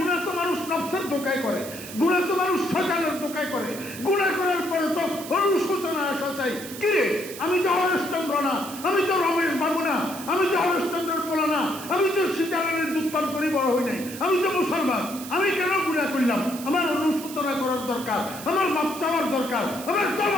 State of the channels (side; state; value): right; noise; hiss, 12 dB below the sound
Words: তো মানুষ নফসের ধোঁকায় করে, গুনাহ তো মানুষ শয়তানের ধোঁকায় করে। গুনাহ করার পরে তো অনুশোচনা আসা চাই, কিরে আমি তো হরেশচন্দ্র না, আমি তো রমেশ বাবু না, আমি তো হরেশচন্দ্রের পোলা না, আমি তো সীতারামের দুধ পান করে বড় হই নাই, আমি তো মুসলমান, আমি কেন গুনাহ করলাম? আমার অনুশোচনা করার দরকার, আমার মাপ চাওয়ার দরকার, আমার